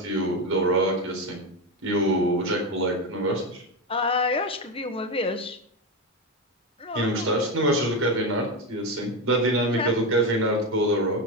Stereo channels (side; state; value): both; normal; correlation 0.14